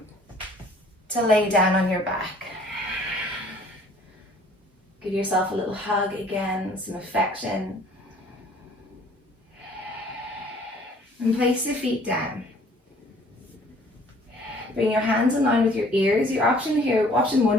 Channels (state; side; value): normal; both; correlation 0.55